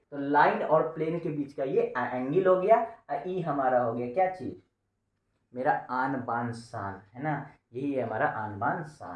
तो लाइन और प्लेन के बीच का ये एंगल हो गया, ई हमारा हो गया क्या चीज, मेरा आन बान शान, है ना, यही है हमारा आन बान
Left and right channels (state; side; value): identical; both; correlation 1.00